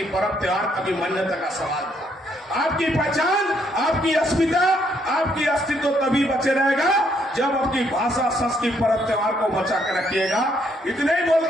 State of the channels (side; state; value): both; normal; correlation 0.71